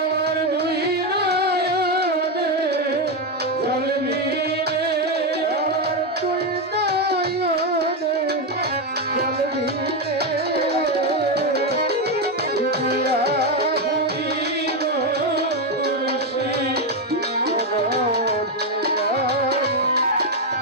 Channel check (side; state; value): both; normal; correlation 0.07